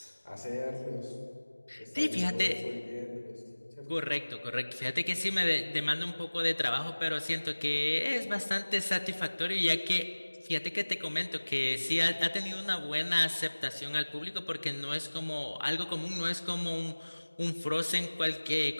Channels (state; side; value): inverted; both; correlation -1.00